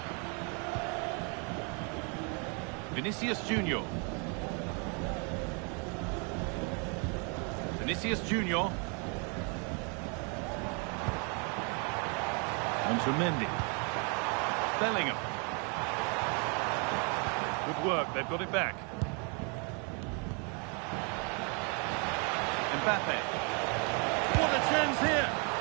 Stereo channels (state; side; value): quieter; left; 35.4 dB